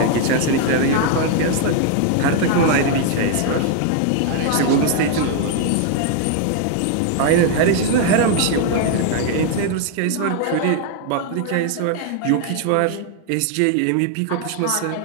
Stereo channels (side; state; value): both; different; correlation 0.00